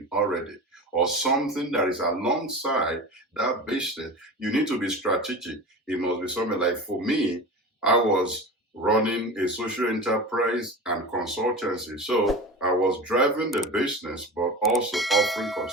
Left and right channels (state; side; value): normal; both; correlation 0.31